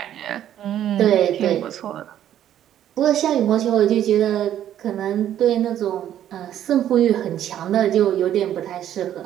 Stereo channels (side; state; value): left; quieter; 11.1 dB